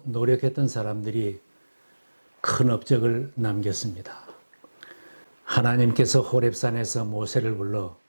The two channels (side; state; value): both; inverted; correlation -1.00